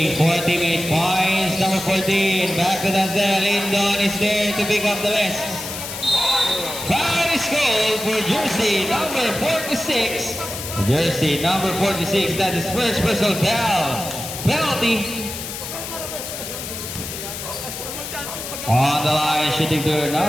for teammate points. Number 14 back to Dansel. Lindon is there to pick up the rest. Foul is called for jersey number 46. Jersey number 46. That is first personal foul. Penalty. On the line, shooting to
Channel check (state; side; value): noise; left; hiss, 8 dB below the sound